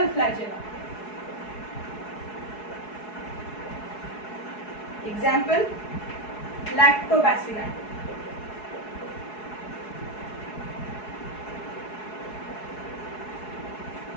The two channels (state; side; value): late; right; 4.7 ms